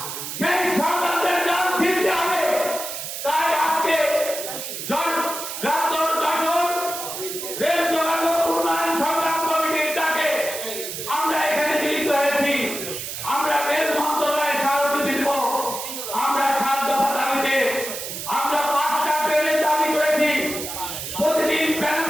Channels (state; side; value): noise; right; hiss, 7 dB below the sound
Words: সেই ষড়যন্ত্রের জাল ছিঁড়তে হবে। তাই আজকে রেল যোগাযোগ উন্নয়ন সংগ্রাম কমিটির ডাকে আমরা এখানে মিলিত হয়েছি। আমরা রেল মন্ত্রণালয়ে স্মারকলিপি দিব। আমরা 7 দফা দাবিতে আমরা 5টা ট্রেনের দাবি করেছি। প্রতিদিন